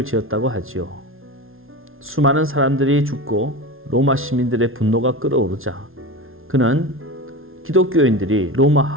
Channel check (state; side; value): late; left; 0.61 ms